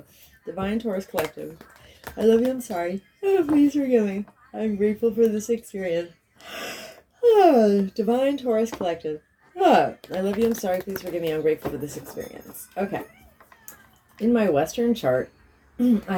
Divine Taurus Collective. I love you, I'm sorry. Please forgive me, I'm grateful for this experience. Divine Taurus Collective. I love you, I'm sorry. Please forgive me, I'm grateful for this experience. Okay. In my Western chart, I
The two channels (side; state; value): both; identical; correlation 1.00